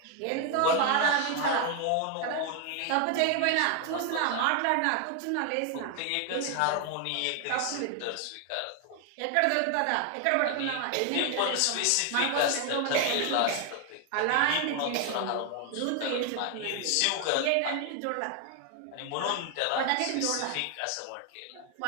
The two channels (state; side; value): different; both; correlation 0.01